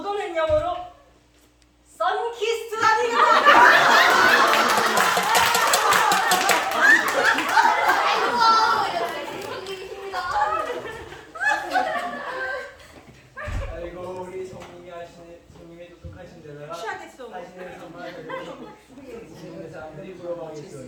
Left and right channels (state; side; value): identical; both; correlation 1.00